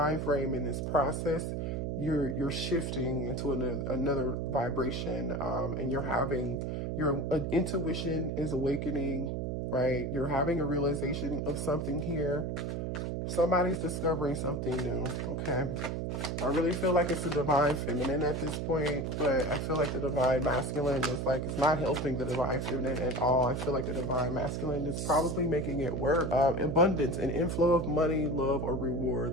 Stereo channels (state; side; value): noise; right; hum, 2 dB below the sound